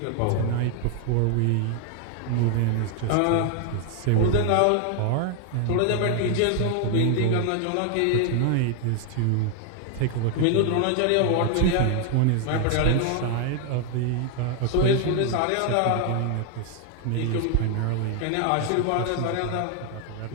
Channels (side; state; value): both; different; correlation 0.00